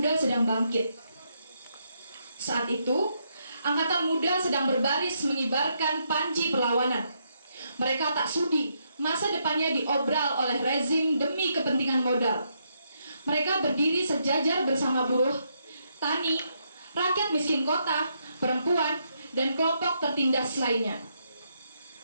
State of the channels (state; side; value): inverted; both; correlation -0.78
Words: sedang bangkit. Saat itu, Angkatan Muda sedang berbaris mengibarkan panji perlawanan. Mereka tak sudi masa depannya diobral oleh rezim demi kepentingan modal. Mereka berdiri sejajar bersama buruh, tani, rakyat miskin kota, perempuan, dan kelompok tertindas lainnya.